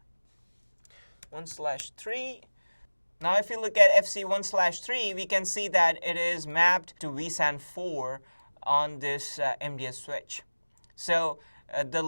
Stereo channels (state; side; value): inverted; both; correlation -1.00